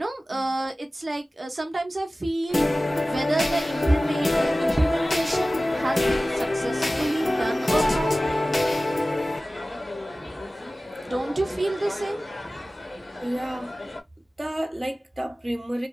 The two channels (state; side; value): normal; both; correlation 0.97